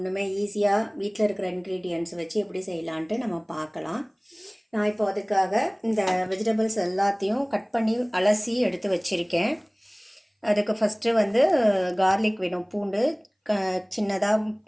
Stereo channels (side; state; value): both; identical; correlation 1.00